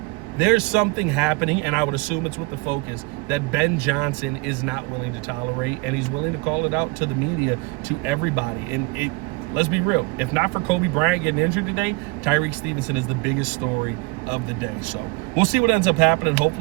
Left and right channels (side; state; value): left; quieter; 26.1 dB